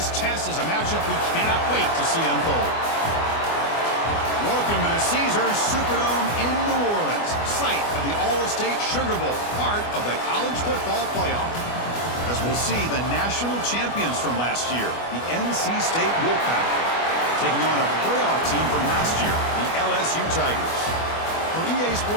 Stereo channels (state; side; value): late; right; 24 ms